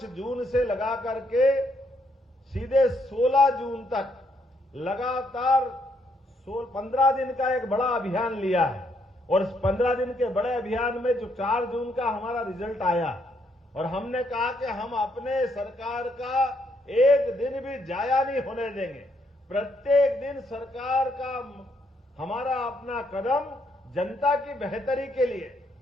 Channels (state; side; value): normal; both; correlation 0.73